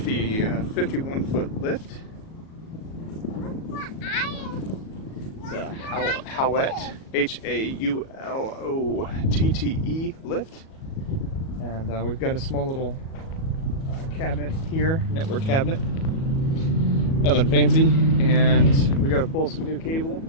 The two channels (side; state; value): right; late; 37 ms